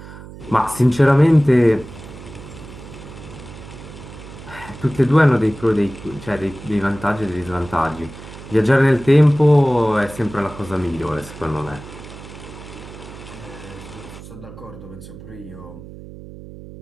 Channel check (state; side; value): noise; right; hum, 15 dB below the sound